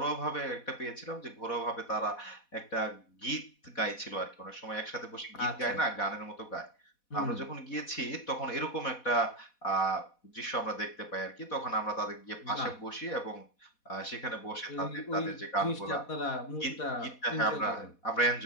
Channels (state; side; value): late; right; 4.1 ms